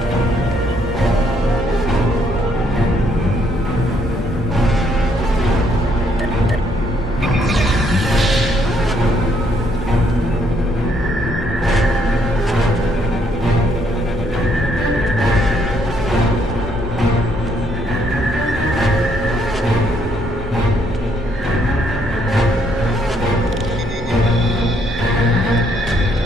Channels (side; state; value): both; normal; correlation 0.70